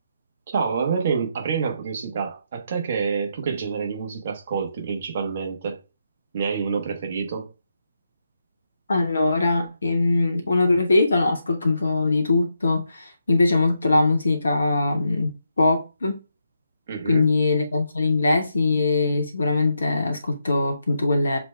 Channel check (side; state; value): both; inverted; correlation -0.82